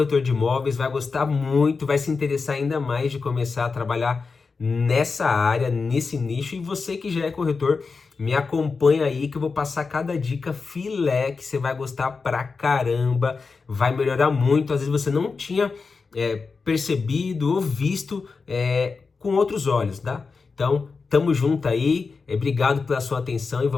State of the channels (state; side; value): quieter; right; 4.6 dB